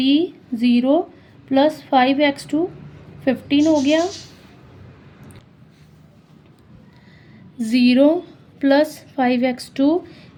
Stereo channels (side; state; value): both; identical; correlation 1.00